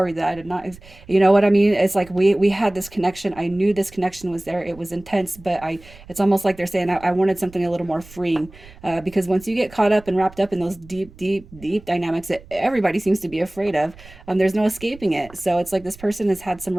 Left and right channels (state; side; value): noise; right; rumble, 21 dB below the sound